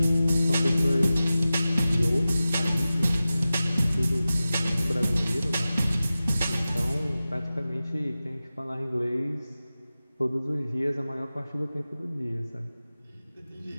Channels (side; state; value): both; inverted; correlation -0.95